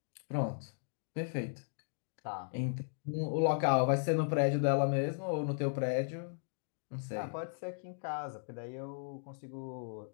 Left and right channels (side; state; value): right; silent; digital silence